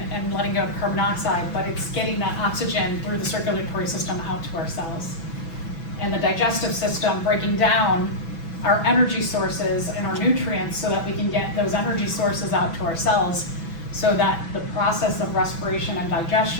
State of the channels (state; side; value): late; right; 6.1 ms